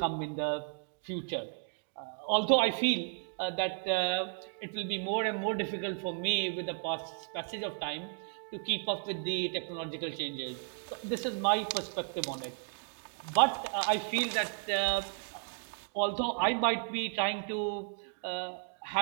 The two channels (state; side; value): silent; left; 55 dB below the other